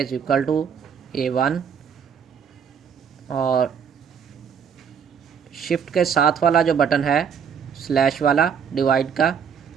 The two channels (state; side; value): quieter; left; 7.2 dB